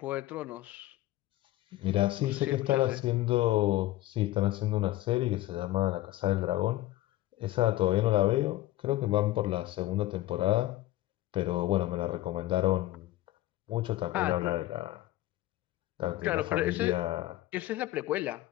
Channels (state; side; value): quieter; right; 16.1 dB